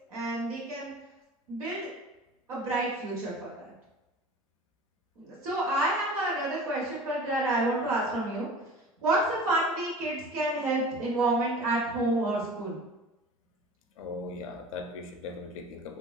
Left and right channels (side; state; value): both; normal; correlation 0.40